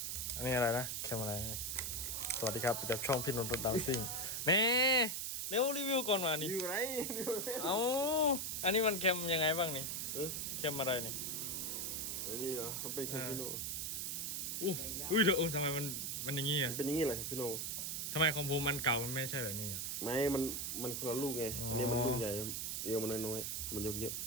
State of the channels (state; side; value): noise; right; hiss, 2 dB below the sound